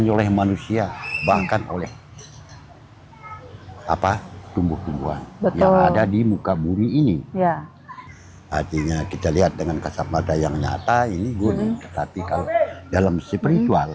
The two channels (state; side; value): identical; both; correlation 1.00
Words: oleh manusia, bahkan oleh tumbuh-tumbuhan yang ada di muka bumi ini. Ya. Artinya kita lihat dengan kasat mata yang nyata ini gunung, tetapi kalau dalam spiritual